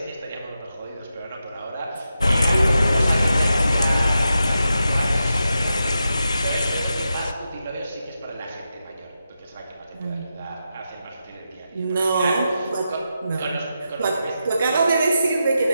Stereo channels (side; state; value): both; inverted; correlation -0.87